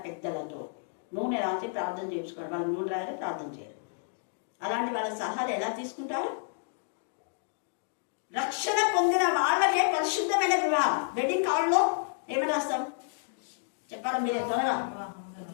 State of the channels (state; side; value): silent; right; digital silence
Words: పెద్దలతో నూనె రాసి ప్రార్థన చేయించుకోండి. వాళ్ళు నూనె రాసి ప్రార్థన చేయరు. అలాంటి వాళ్ళ సలహాలు ఎలా తీసుకుంటారు? రక్షణ పొందిన వాళ్ళకే పరిశుద్ధమైన వివాహం. వెడ్డింగ్ కార్డులో ఏమని రాస్తాం చెప్పాలి మీరే త్వరగా?